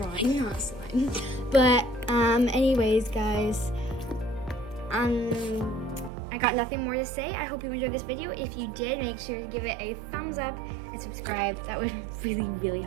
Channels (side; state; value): left; drops out; at 6.1 s